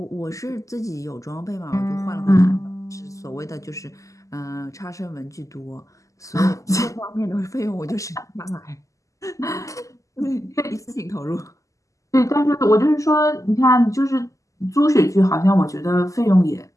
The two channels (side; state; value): right; late; 0.16 ms